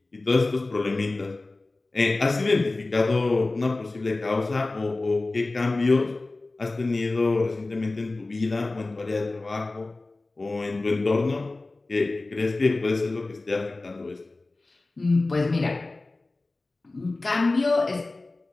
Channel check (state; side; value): quieter; right; 3.2 dB